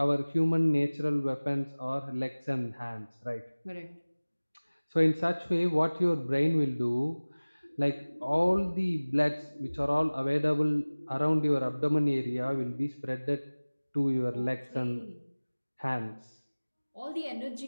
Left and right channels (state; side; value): inverted; both; correlation -1.00